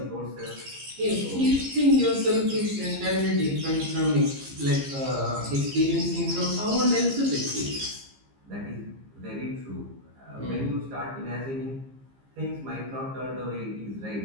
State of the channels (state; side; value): late; left; 15 ms